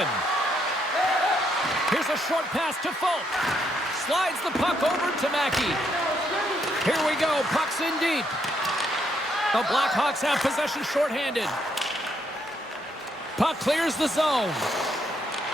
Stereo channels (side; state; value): both; normal; correlation 0.75